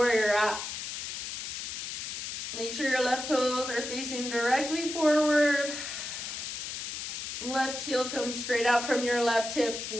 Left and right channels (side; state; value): left; noise; hiss, 5 dB below the sound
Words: you're at. Make sure your left toes are facing directly forward. Left heel comes straight out from your left hip.